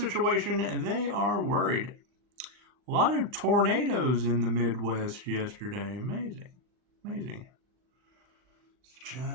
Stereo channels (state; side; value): late; left; 39 ms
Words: they are worried. A lot of tornadoes in the Midwest yesterday. Amazing. Amazing. It's